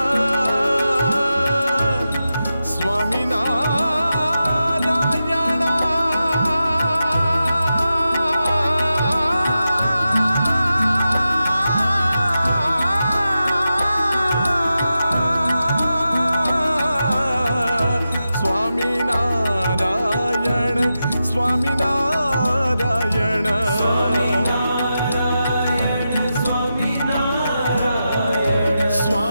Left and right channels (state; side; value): inverted; both; correlation -0.90